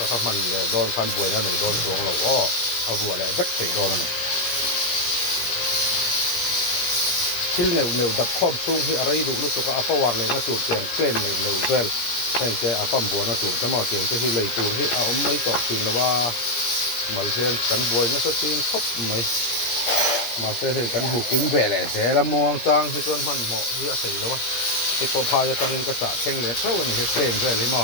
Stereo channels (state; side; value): late; right; 17 ms